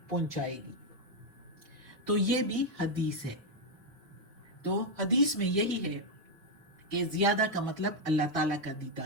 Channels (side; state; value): left; late; 2.3 ms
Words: پہنچائے گی۔ تو یہ بھی حدیث ہے. تو حدیث میں یہی ہے کہ زیادہ کا مطلب اللہ تعالیٰ کا